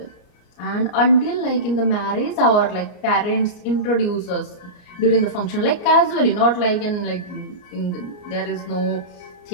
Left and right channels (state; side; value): late; right; 34 ms